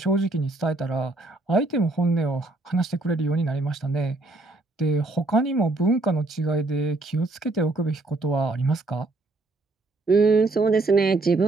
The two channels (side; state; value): left; quieter; 3.1 dB